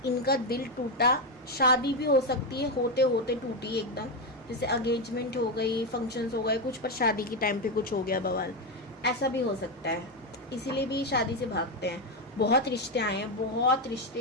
इनका दिल टूटा, शादी भी हो सकती है, होते होते टूटी एकदम, जैसे अगेंजमेंट हो गई, फंक्शंस हो गए कुछ, पर शादी के टाइम पे कुछ हो गया बवाल, ऐसा भी हो सकता है। इसीलिए भी शादी से भागते हैं। बहुत रिश्ते आए हैं, बहुत रिश्ते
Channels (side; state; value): both; normal; correlation 0.08